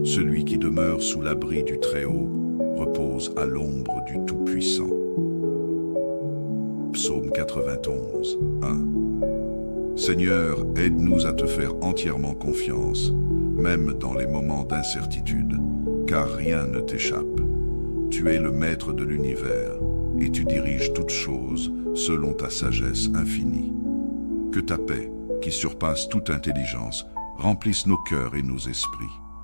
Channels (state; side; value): inverted; both; correlation -1.00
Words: Celui qui demeure sous l'abri du Très-Haut repose à l'ombre du Tout-Puissant. Psaume 91, 1. Seigneur, aide-nous à te faire entièrement confiance, même dans les moments d'incertitude, car rien ne t'échappe. Tu es le maître de l'univers, et tu diriges toutes choses selon ta sagesse infinie. Que ta paix, qui surpasse toute intelligence, remplisse nos cœurs et nos esprits.